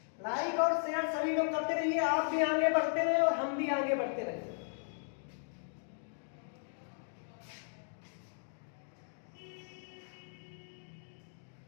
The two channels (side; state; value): right; silent; digital silence